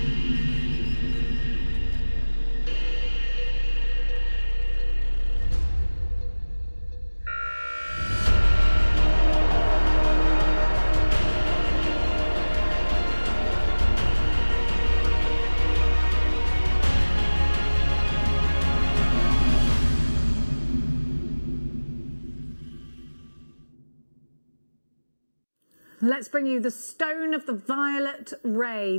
Let's bring you the stone of the violet ray.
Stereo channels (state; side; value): inverted; both; correlation -1.00